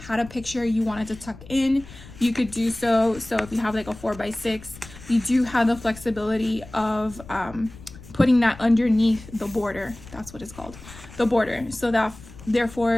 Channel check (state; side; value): noise; left; rumble, 18 dB below the sound